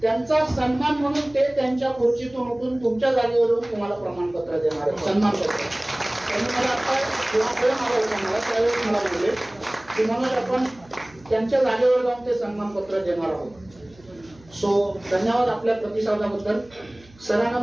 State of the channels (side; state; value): right; noise; hum, 26 dB below the sound